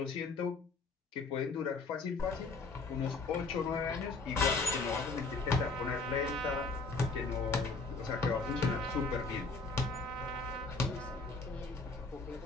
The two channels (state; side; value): quieter; right; 3.9 dB